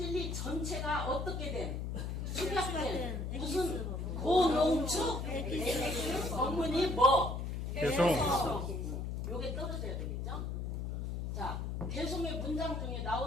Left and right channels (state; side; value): noise; left; hum, 3 dB below the sound